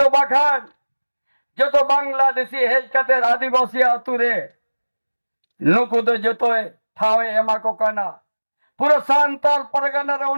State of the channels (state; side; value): inverted; both; correlation -1.00